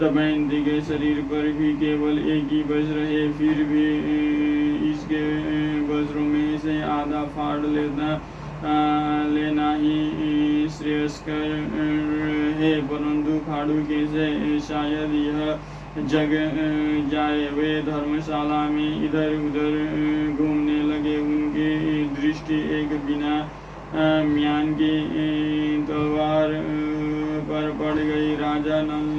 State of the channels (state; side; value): identical; both; correlation 1.00